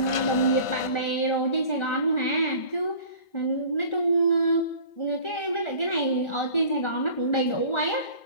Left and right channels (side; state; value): right; late; 1.4 ms